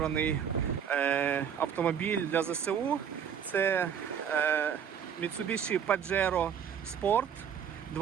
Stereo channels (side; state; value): left; quieter; 8.1 dB